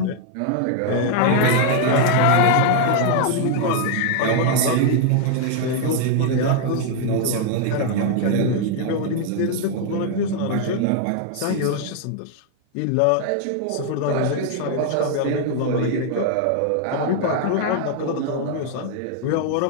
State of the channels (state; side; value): different; both; correlation 0.00